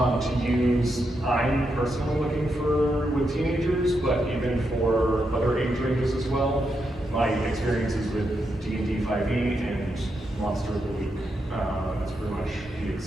use? I'm personally looking for with teenagers, but even for other age ranges as well. My experiences with D&D 5e and Monster of the Week. That's pretty much the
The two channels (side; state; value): both; normal; correlation 0.83